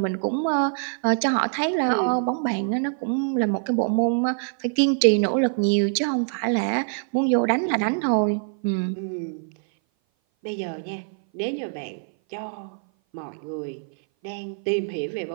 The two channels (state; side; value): silent; left; 58 dB below the other